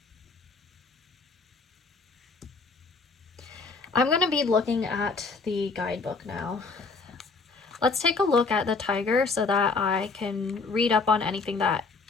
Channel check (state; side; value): quieter; right; 4.1 dB